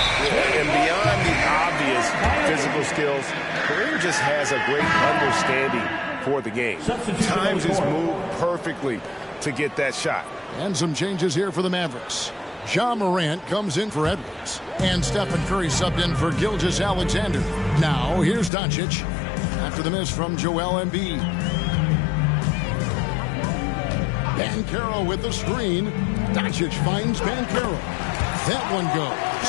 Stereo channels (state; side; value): drops out; right; at 18.5 s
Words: And beyond the obvious physical skills, Kareem just has a great understanding for the game. Times his move perfectly to get that shot. And some changes here for the Mavericks. Ja Morant comes in for Edwards. And Stephen Curry subbed in for Gilgeous-Alexander. Now, here's Doncic after the miss from Joel Embiid. Banchero with the screen. Doncic finds Banchero. That one